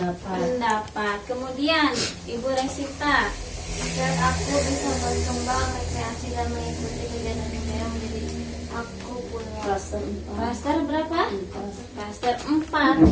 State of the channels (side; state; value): both; identical; correlation 1.00